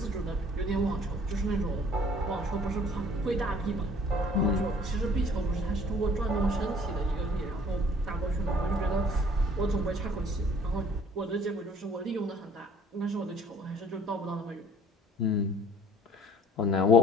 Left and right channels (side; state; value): both; normal; correlation 0.55